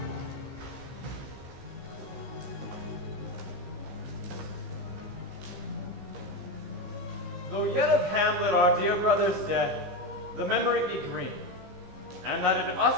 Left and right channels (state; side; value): late; left; 15 ms